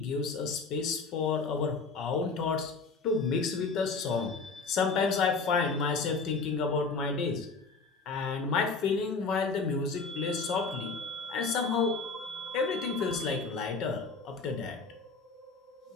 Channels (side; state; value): right; quieter; 4.4 dB